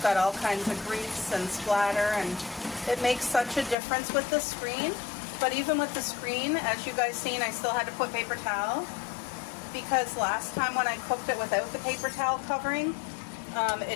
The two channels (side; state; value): right; drops out; at 3.8 s